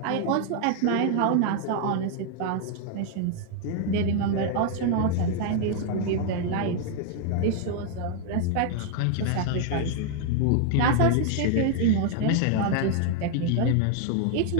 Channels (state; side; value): different; both; correlation 0.00